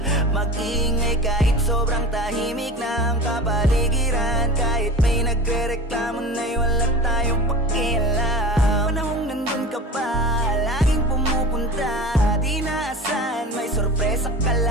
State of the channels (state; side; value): normal; both; correlation 0.37